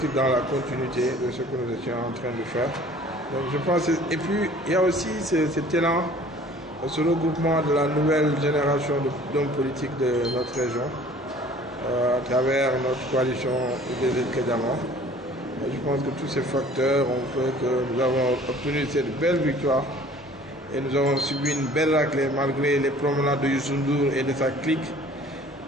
dans la continuité de ce que nous étions en train de faire. Donc, je pense, et puis, il y a aussi cet élan, ce regroupement de la nouvelle génération d'hommes politiques de notre région, à travers notre coalition des Kédiama. Je pense que tous ces facteurs ont fait que nous avons obtenu cette belle victoire et nous avons subi une belle raclée malgré les promenades de Youssou Ndour et de sa clique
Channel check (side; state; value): both; normal; correlation 0.50